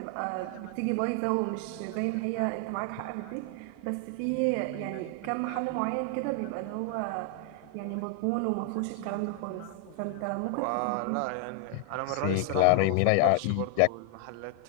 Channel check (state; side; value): different; both; correlation 0.00